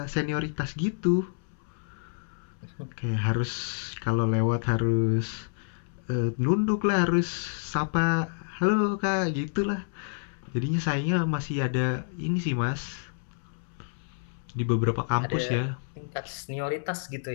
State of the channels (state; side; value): silent; right; 59 dB below the other